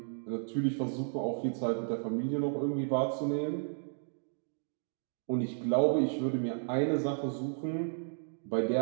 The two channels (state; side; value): silent; left; digital silence